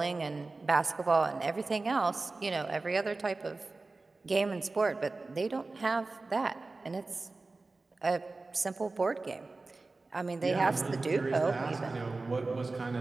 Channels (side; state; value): left; quieter; 3.5 dB